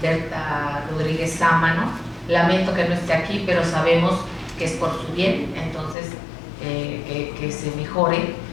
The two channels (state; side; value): drops out; right; at 6.0 s